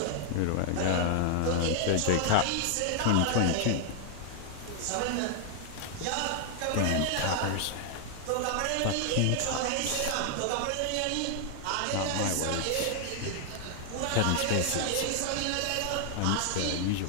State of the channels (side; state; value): both; different; correlation 0.00